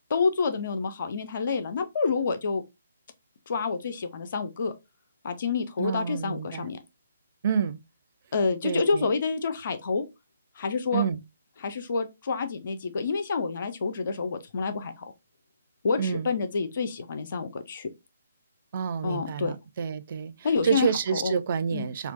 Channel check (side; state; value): both; inverted; correlation -0.73